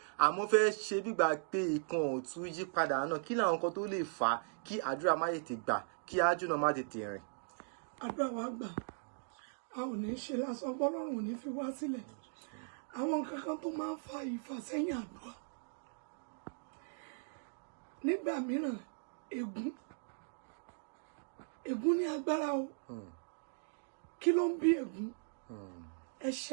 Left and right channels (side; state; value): left; silent; digital silence